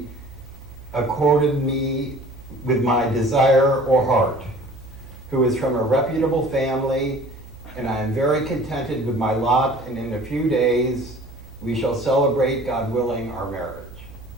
accorded me with my desire or heart, who is from a reputable family, and I am very contented with my lot, and in a few days we shall celebrate, God willing, our marriage.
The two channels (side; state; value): both; normal; correlation 0.48